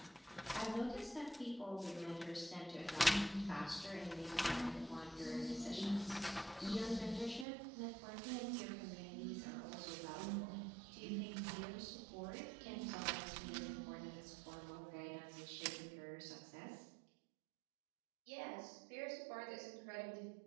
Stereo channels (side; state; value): left; drops out; at 7.5 s